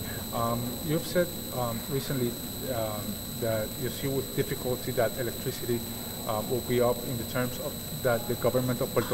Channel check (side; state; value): both; identical; correlation 1.00